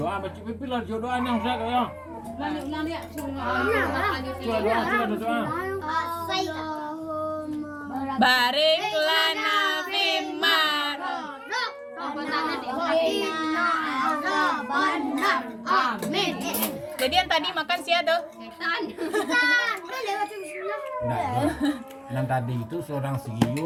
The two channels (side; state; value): both; identical; correlation 1.00